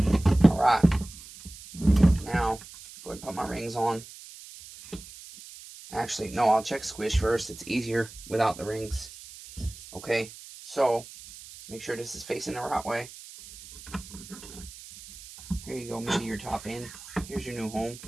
Alright. Now, go ahead and put my rings on. Actually, no, I'll check squish first. It's easier without the rings. Okay, so make sure this is facing the right way. Here you go, maybe your top end. Here's your new home.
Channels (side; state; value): right; noise; hiss, 16 dB below the sound